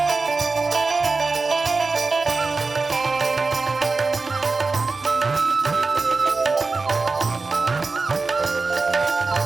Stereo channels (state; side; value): quieter; left; 4.0 dB